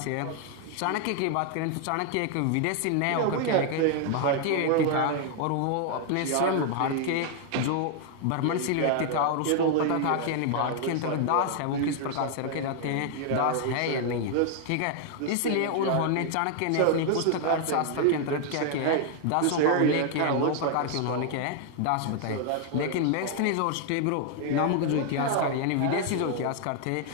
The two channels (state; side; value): different; both; correlation 0.00